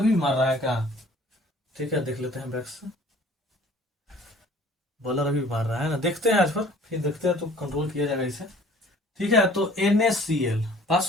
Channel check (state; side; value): normal; both; correlation 0.52